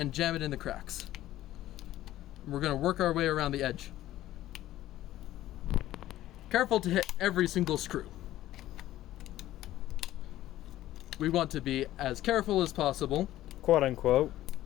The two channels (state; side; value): quieter; right; 14.3 dB